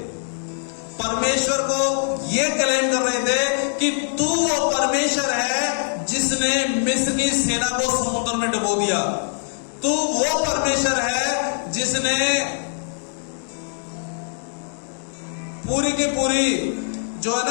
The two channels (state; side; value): silent; right; digital silence